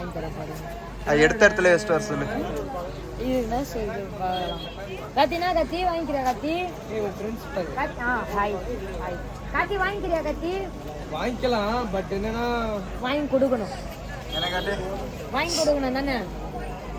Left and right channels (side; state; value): both; identical; correlation 1.00